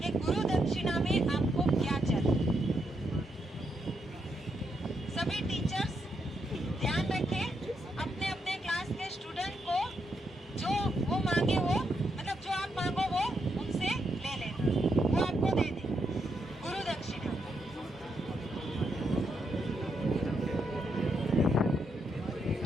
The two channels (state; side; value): normal; both; correlation 0.80